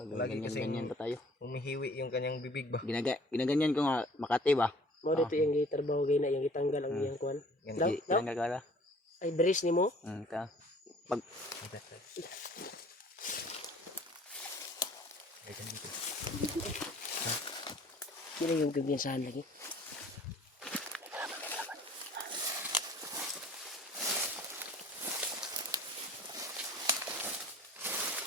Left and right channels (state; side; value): normal; both; correlation 0.52